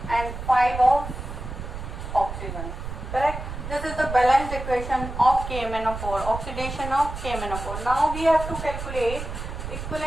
and 5 of oxygen. Correct? This is the balanced equation of KMnO4, oxidation of KMnO4. Now we have to calculate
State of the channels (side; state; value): right; noise; rumble, 8 dB below the sound